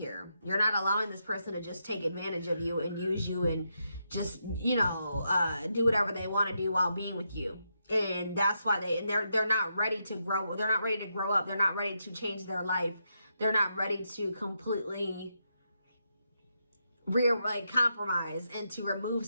You're not allowing this person to just take advantage of you and use you and just, you know, do whatever they want to do while being with you. And that's why they're not ready to grow. They're not ready to grow up. They're not ready to change their life. They're not ready to completely compromise and to remove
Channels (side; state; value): both; inverted; correlation -0.82